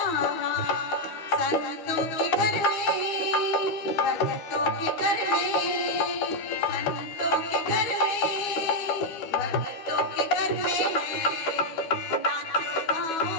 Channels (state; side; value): late; right; 12 ms